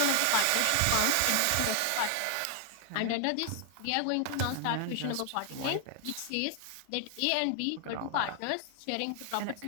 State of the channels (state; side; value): different; both; correlation 0.00